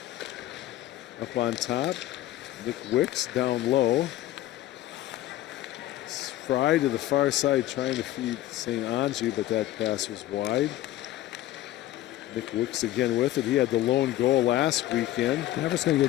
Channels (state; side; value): quieter; right; 14.5 dB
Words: Up on top, Nick Wicks down low. Fry to the far side trying to feed St. Angie, but that pass was wide. Nick Wicks again with it. He had the lone goal last weekend. Mavericks going to